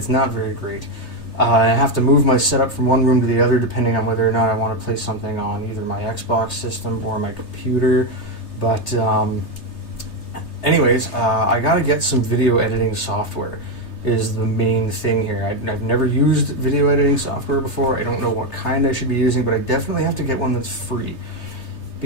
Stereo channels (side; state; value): right; late; 3.3 ms